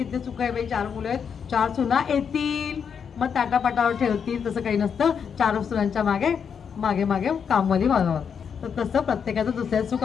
सुख आहे बाई, 4 मुलं आहेत, 4 सुना येतील, मग ताटापाटावर ठेवतील. तसं काही नसतं. 4 सुनांच्या मागे मागे मागे कामवाली बघावं. तर तसं प्रत्येकाचं दुसऱ्या सुख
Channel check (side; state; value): right; quieter; 7.0 dB